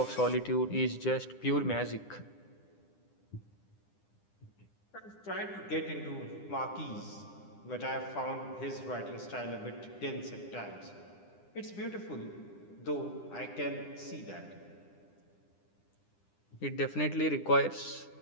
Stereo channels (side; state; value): right; late; 9.9 ms